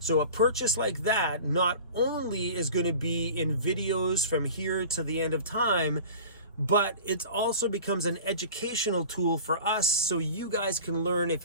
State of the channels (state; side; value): inverted; both; correlation -0.39